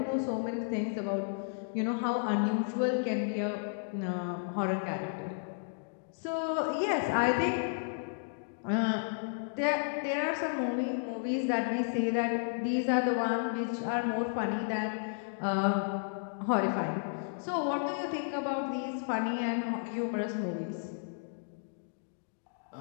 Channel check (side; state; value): right; silent; digital silence